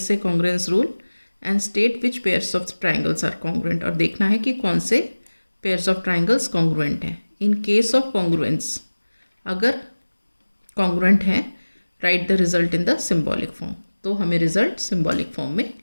congruence rule and state which pairs of triangles are congruent, और देखना है कि कौन से pairs of triangles congruent हैं. In case of congruence, अगर congruent है, right the result in the symbolic form. तो हमें रिजल्ट सिंबॉलिक फॉर्म में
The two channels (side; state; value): both; inverted; correlation -1.00